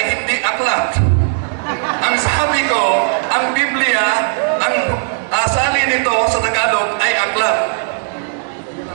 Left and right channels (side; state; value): left; silent; digital silence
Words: hindi aklat. Ang sabi ko, ang Biblia, ang asali nito sa Tagalog ay aklat.